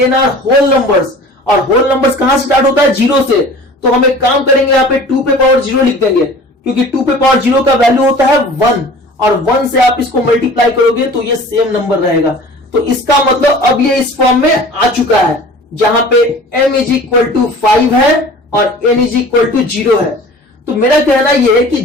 n are whole numbers, और होल नंबर्स कहां से स्टार्ट होता है, 0 से। तो हम एक काम करेंगे, यहाँ पे 2 पे पावर 0 लिख देंगे, क्योंकि 2 पे पावर 0 का वैल्यू होता है 1, और 1 से आप इसको मल्टीप्लाई करोगे तो ये सेम नंबर रहेगा। तो इसका मतलब अब ये इस फॉर्म में आ चुका है, जहां पे m इज इक्वल टू 5 है और n इज इक्वल टू 0 है। तो मेरा कहना यह है कि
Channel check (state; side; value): normal; both; correlation 0.43